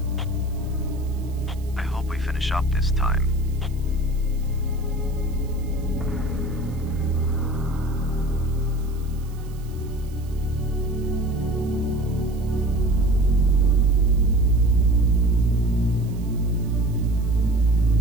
I hope we finish up this time.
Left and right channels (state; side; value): noise; right; hiss, 25 dB below the sound